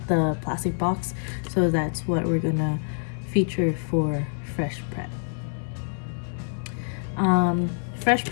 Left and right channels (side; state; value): right; silent; 61 dB below the other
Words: the plastic box, so that's what we're gonna feature for FreshPrep.